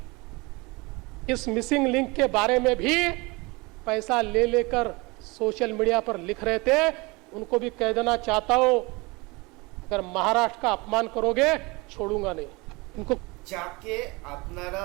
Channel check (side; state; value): left; quieter; 25.4 dB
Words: इस मिसिंग लिंक के बारे में भी पैसा ले लेकर सोशल मीडिया पर लिख रहे थे। उनको भी कह देना चाहता हूं, अगर महाराष्ट्र का अपमान करोगे छोड़ूंगा नहीं इनको। যাকে আপনারা